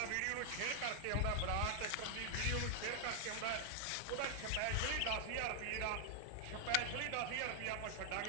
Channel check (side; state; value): both; different; correlation 0.00